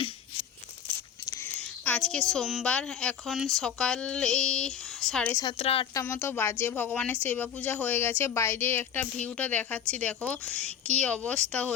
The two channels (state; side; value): quieter; right; 8.7 dB